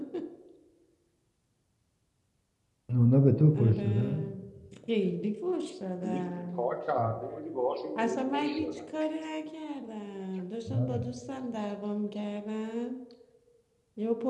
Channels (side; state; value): both; identical; correlation 1.00